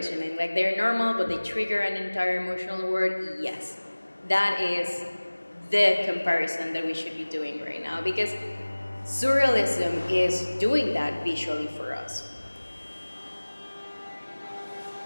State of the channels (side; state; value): both; inverted; correlation -1.00